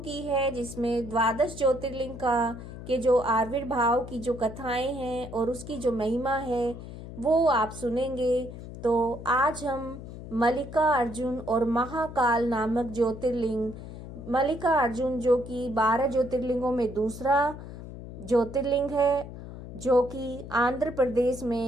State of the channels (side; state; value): left; noise; hum, 12 dB below the sound